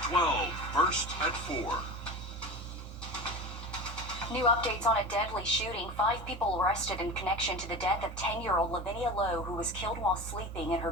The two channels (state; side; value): normal; both; correlation 0.30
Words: 12, first at 4. New updates on a deadly shooting. 5 people arrested in connection to the death of 10-year-old Lavinia Lowe, who was killed while sleeping in her